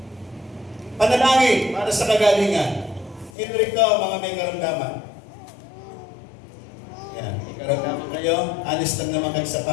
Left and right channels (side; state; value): right; drops out; at 3.3 s